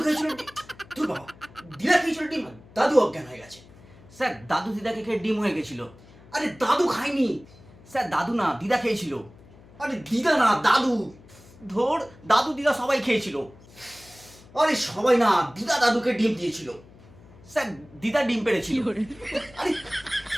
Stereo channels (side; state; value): left; noise; hum, 23 dB below the sound